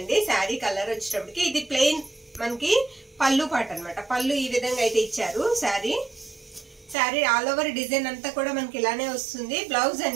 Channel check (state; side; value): drops out; left; at 7.0 s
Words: శారీ కలర్ వచ్చేటప్పటికి. ఇది ప్లెయిన్ మనకి పళ్ళు పాట అనమాట. పళ్ళు ఈ విధంగా అయితే ఇచ్చారు. శారీ ఆల్ ఓవర్ డిజైన్ అంతా కూడా మనకి ఇలానే వస్తుంది. బ్లౌజ్